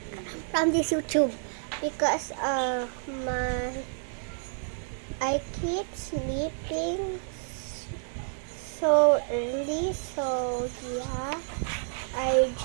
from this YouTube because I keep sleeping so early, so yeah, I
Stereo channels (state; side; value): silent; left; 58 dB below the other